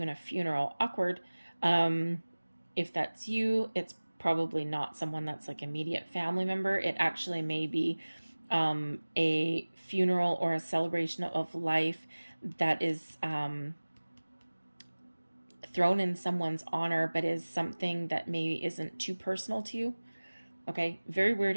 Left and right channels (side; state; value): both; inverted; correlation -1.00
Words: a funeral. Awkward. If that's you, it's probably not someone that's like immediate family member. It actually may be a funeral or a celebration of life that is thrown in someone's honor, but is something that maybe isn't too personal to you. Okay, very weird